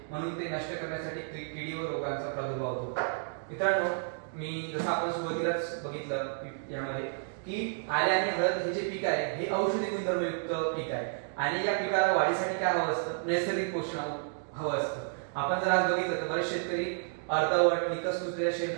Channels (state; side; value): silent; left; digital silence